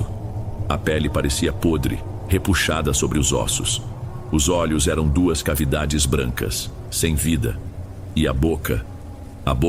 A pele parecia podre, repuxada sobre os ossos. Os olhos eram duas cavidades brancas, sem vida. E a boca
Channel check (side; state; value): both; identical; correlation 1.00